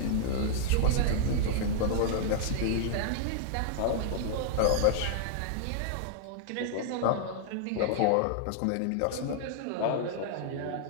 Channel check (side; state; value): both; different; correlation -0.01